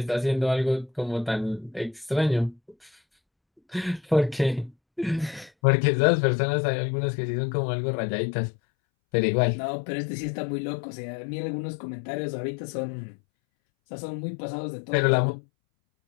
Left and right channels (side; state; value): right; drops out; at 5.5 s